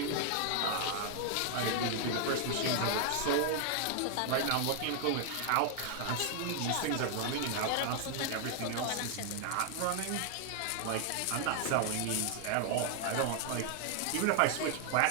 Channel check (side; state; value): both; different; correlation 0.00